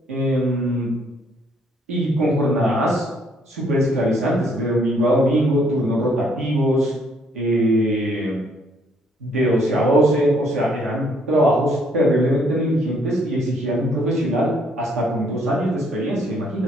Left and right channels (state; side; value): normal; both; correlation 0.67